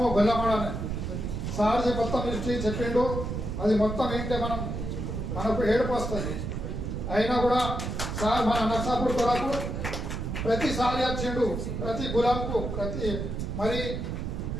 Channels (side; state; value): right; noise; rumble, 4 dB below the sound